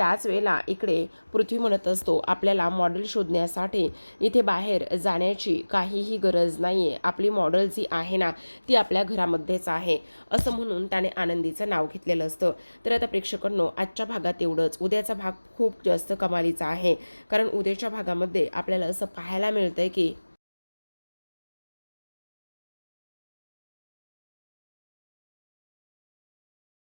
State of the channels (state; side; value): inverted; both; correlation -1.00